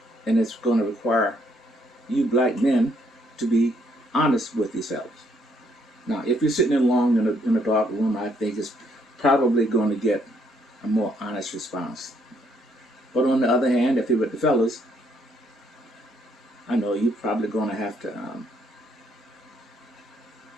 and it's going to require you black men to be honest with yourselves. Now, if you're sitting alone in a dark room, I think it's probably going to get a more honest response. But on the other hand, if you're with the fellas, I know you're probably going to have to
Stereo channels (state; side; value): normal; both; correlation 0.70